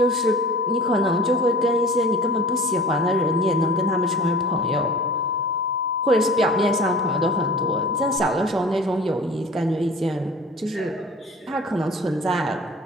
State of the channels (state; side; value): normal; both; correlation 0.42